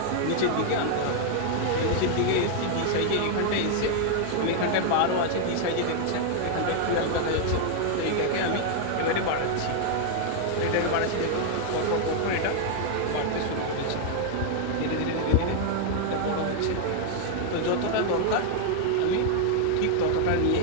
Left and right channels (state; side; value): different; both; correlation 0.00